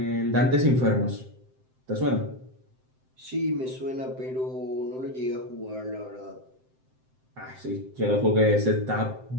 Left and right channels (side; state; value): left; late; 7.7 ms